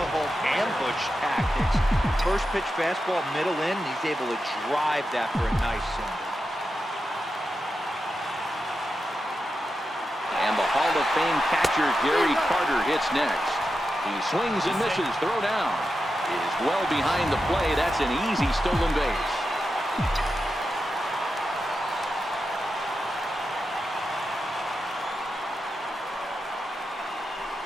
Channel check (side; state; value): both; normal; correlation 0.89